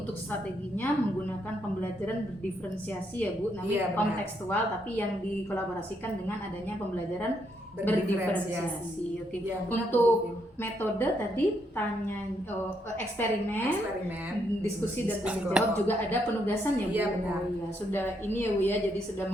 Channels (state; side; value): normal; both; correlation 0.76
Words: strateginya menggunakan pembelajaran berdiferensiasi ya Bu, namanya kontekstual, tapi yang dikolaborasikan dengan adanya pembelajaran berdiferensiasi. Oke. Ya, untuk metode tadi eksperimen, diskusi dan tanya jawab, juga ada penugasan ya Bu. Iya, benar. Oh, ya, sudah ini ya Bu ya, jadi sudah